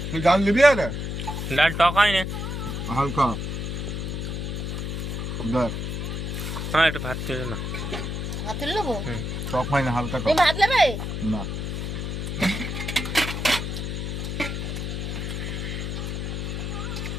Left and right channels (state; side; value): noise; left; hum, 3 dB below the sound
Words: তুই ডাল দিবি আরে? ডাল টক হয় না। হালকা দেখ, হ্যাঁ একটু ভাত তুলে না। ভাত তুলে নেবো? টক হয় না, হালকা তুমি টক। ভাত নেবে? না